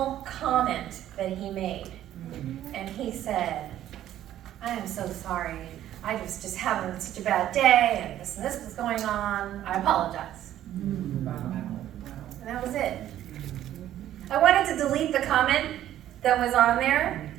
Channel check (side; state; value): left; quieter; 12.2 dB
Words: comment that he made. And he said, I am so sorry. I was just having such a bad day, and this was going on. I apologize. And that was it. I wanted to delete the comment that was on there,